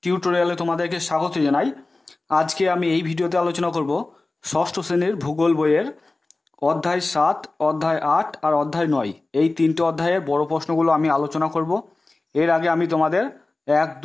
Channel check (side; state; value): right; quieter; 3.2 dB